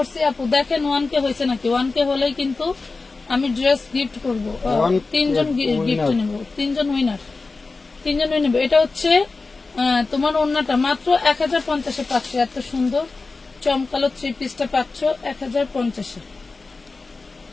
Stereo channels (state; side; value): quieter; right; 3.8 dB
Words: আপু, দেখেন 1K হয়েছে নাকি। 1K হলেই কিন্তু আমি ড্রেস গিফট করবো, 3 জন গিফট নেব, 3 জন উইনার, 3 জন উইনার। এটা হচ্ছে তোমার ওড়নাটা মাত্র 1050-এ পাচ্ছ, এত সুন্দর চমকালো 3 পিসটা পাচ্ছ 1050-এ,